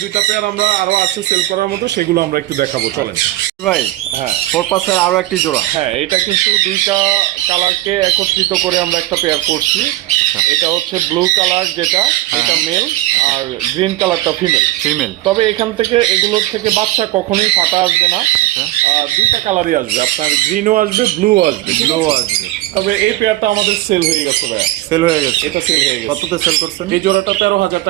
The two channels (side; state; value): left; quieter; 15.9 dB